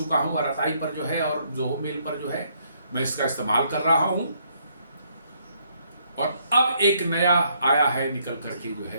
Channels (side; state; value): both; inverted; correlation -0.70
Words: हूं आरताई पर जो है, और जोहो मेल पर जो है मैं इसका इस्तेमाल कर रहा हूं। और अब एक नया आया है निकल करके जो